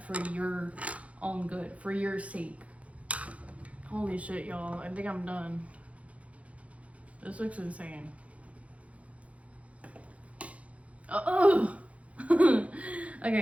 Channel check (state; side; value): late; left; 0.065 ms